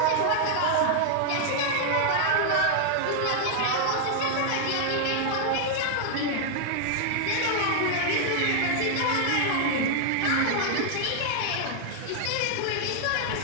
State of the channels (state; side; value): different; both; correlation 0.00